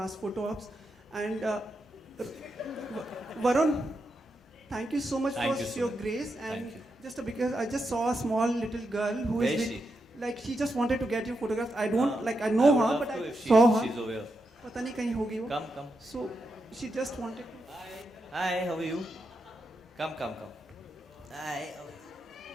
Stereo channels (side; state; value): both; normal; correlation 0.85